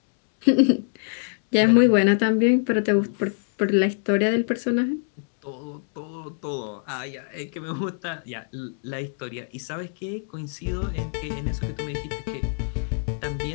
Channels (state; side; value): silent; right; digital silence